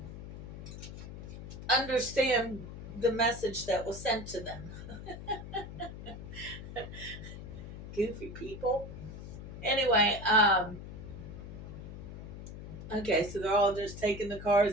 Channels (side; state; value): left; noise; hum, 11 dB below the sound